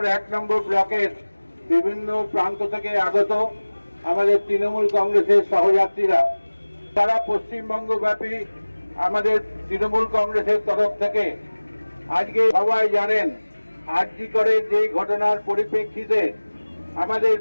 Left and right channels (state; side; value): inverted; both; correlation -1.00